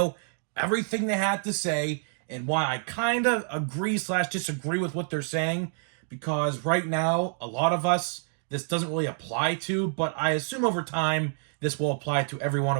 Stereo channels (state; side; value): silent; left; 60 dB below the other